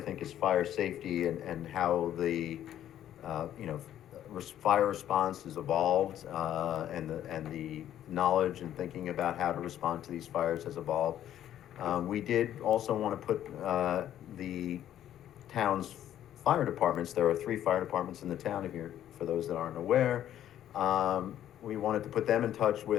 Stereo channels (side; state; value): right; quieter; 11.4 dB